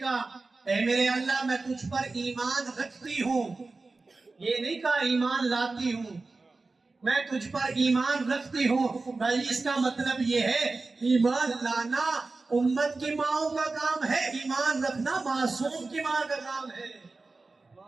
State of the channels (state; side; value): quieter; left; 3.6 dB